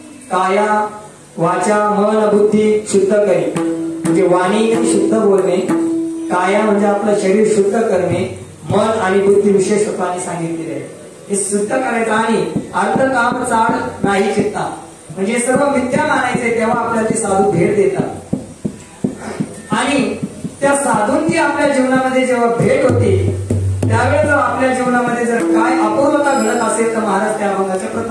काया वाचा मन बुद्धी शुद्ध करी, म्हणजे वाणी शुद्ध बोलणे, काया म्हणजे आपलं शरीर शुद्ध करणे, मन आणि बुद्धी विशेष रूपाने सांगितलेले आहे. हे शुद्ध करायचं आणि अर्थ काम चाड नाही चित्ता, म्हणजे सर्व मिथ्या मानायचे, तेव्हा आपल्याला ते साधू भेट देतात. आणि त्या साधूंची आपल्या जीवनामध्ये जेव्हा भेट होते त्यावेळेस जर आपल्या जीवनामध्ये जर काय अपूर्वता घडत असेल तर महाराज त्या अभंगाच्या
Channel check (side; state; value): both; identical; correlation 1.00